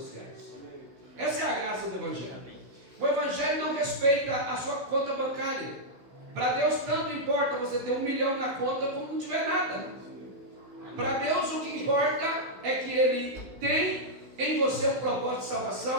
Essa é a graça do evangelho. O evangelho não respeita a sua conta bancária. Para Deus tanto importa você ter 1 milhão na conta como não tiver nada. Para Deus o que importa é que Ele tem em você um propósito de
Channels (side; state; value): left; late; 16 ms